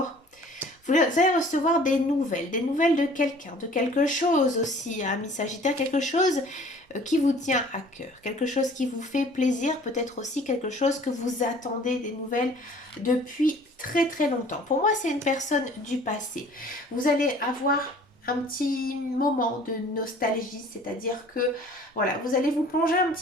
Vous allez recevoir des nouvelles de quelqu'un, de quelque chose aussi, hein, ami Sagittaire, quelque chose qui vous tient à cœur, quelque chose qui vous fait plaisir, peut-être aussi quelque chose que vous attendez des nouvelles depuis très très longtemps. Pour moi, c'est une personne du passé. Vous allez avoir un petit moment de nostalgie, c'est-à-dire que voilà, vous allez vous plonger un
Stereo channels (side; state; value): both; normal; correlation 0.51